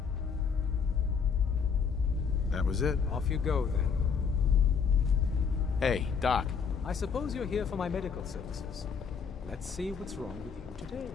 That was it. Off you go, then. Hey, Doc. I suppose you're here for my medical services. Let's see what's wrong with you today.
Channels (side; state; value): right; quieter; 6.2 dB